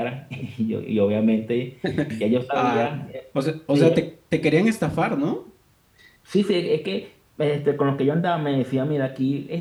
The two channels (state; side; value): identical; both; correlation 1.00